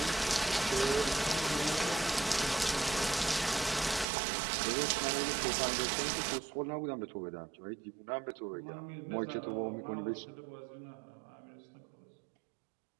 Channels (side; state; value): left; drops out; at 4.0 s